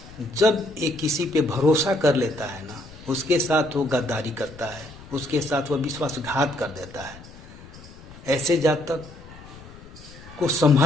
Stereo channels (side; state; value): left; noise; rumble, 19 dB below the sound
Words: जब ये किसी पे भरोसा कर लेता है ना, उसके साथ वो गद्दारी करता है, उसके साथ वो विश्वासघात कर देता है। ऐसे जातक को